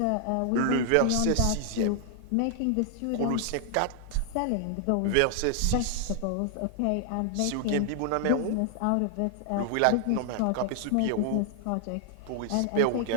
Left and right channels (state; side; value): different; both; correlation 0.00